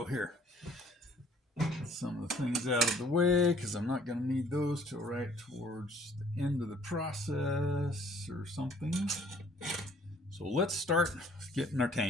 here. Get some of the things out of the way because I'm not going to need those till right towards the end of the process or something. So let's start getting our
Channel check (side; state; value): both; normal; correlation 0.58